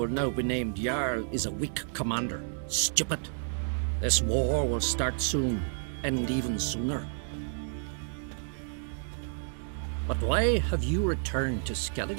now be named Jarl, is a weak commander. Stupid. This war will start soon, end even sooner. But why have you returned to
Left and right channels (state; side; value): silent; left; digital silence